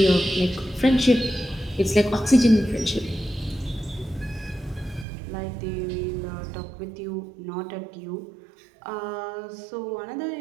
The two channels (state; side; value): drops out; left; at 5.1 s